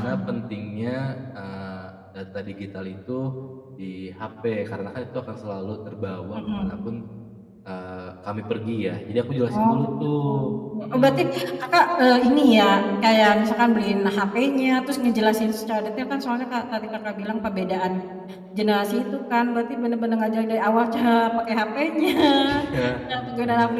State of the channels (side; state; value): both; identical; correlation 1.00